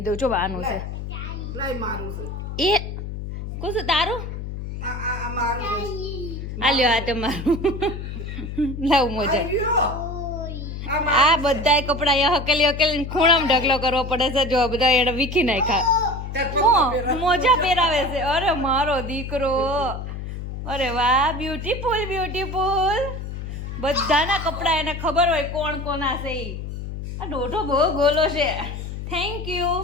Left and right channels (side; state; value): left; noise; hum, 7 dB below the sound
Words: દઉં. જો બાનું છે એ કોણ તારું? આ લ્યો આ તમારું લાવ મોજા. આ બધાય કપડા અહીંયા હકેલી ખૂણામાં ઢગલો કરવો પડે છે. જો બધા એને વીખી નાખ્યા. મોજા પહેરાવે છે. અરે મારો દીકરો. અરે વાહ બ્યુટીફુલ. બધાના કપડા એને ખબર હોય કોણ કોના છે. આ દોઢો બહુ ગોલો છે. Thank you.